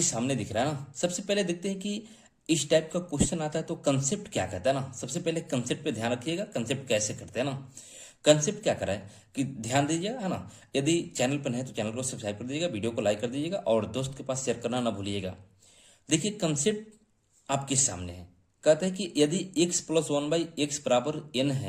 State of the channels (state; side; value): identical; both; correlation 1.00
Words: सामने दिख रहा है ना। सबसे पहले देखते हैं कि इस टाइप का क्वेश्चन आता है तो कंसेप्ट क्या कहता है ना। सबसे पहले कंसेप्ट पे ध्यान रखिएगा, कंसेप्ट कैसे करते हैं ना। कंसेप्ट क्या करा है कि ध्यान दीजिएगा, है ना। यदि चैनल पर है तो चैनल को सब्सक्राइब कर दीजिएगा, वीडियो को लाइक कर दीजिएगा और दोस्त के पास शेयर करना ना भूलिएगा। देखिए कंसेप्ट आपके सामने है। कहता है कि यदि x plus one by x बराबर n